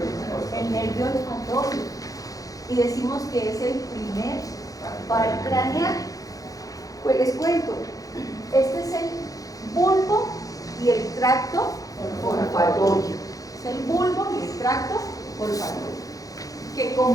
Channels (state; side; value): late; right; 0.17 ms